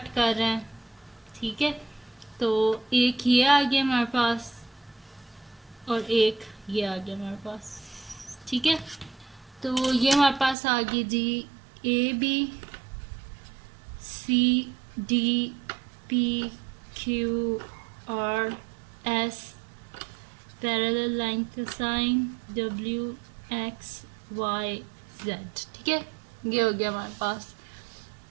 कर रहे हैं, ठीक है। तो एक ये आ गया हमारे पास और एक ये आ गया हमारे पास, ठीक है। तो ये हमारे पास आ गई जी A B C D P Q R S parallel line का sign W X Y Z, ठीक है। ये हो गया हमारे पास,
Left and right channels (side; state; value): left; drops out; at 10.6 s